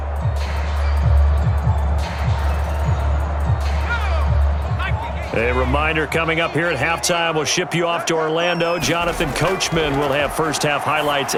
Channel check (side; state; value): both; identical; correlation 1.00